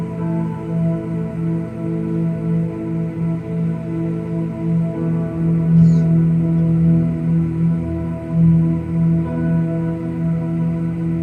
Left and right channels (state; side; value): identical; both; correlation 1.00